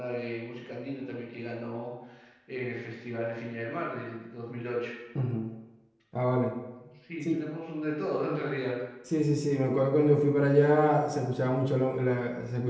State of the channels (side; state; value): both; identical; correlation 1.00